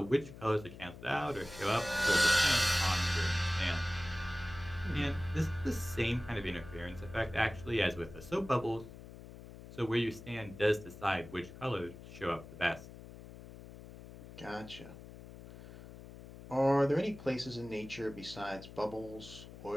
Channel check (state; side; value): noise; left; hum, 15 dB below the sound